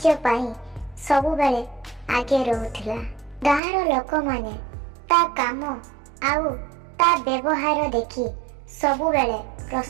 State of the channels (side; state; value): left; drops out; at 3.6 s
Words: पाई सबुबेले आगे रहुथिला। गाँवर लोक माने ता काम आउ ता व्यवहार देखि सबुबेले